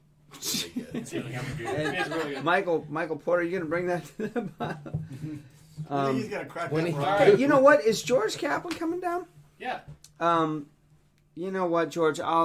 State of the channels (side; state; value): both; identical; correlation 1.00